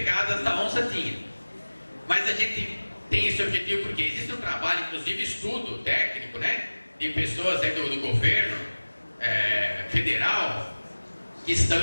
da onça tinha. Mas a gente tem esse objetivo porque existe um trabalho, inclusive estudo técnico, né, de pessoas aí do governo federal que estão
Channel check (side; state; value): both; inverted; correlation -1.00